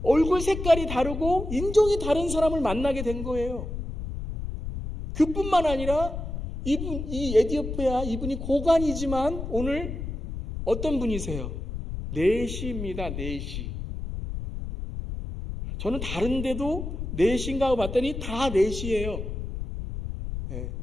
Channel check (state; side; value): noise; left; rumble, 6 dB below the sound